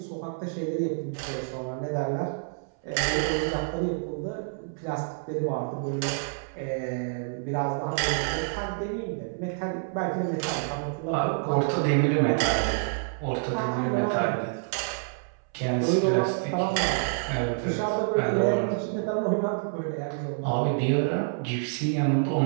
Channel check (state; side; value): silent; left; 59 dB below the other